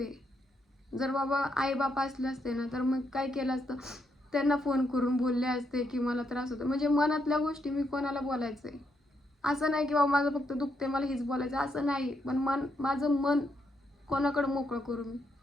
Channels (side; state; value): both; normal; correlation 0.78